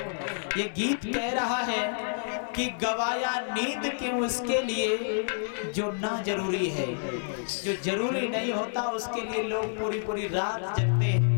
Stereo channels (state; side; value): silent; right; digital silence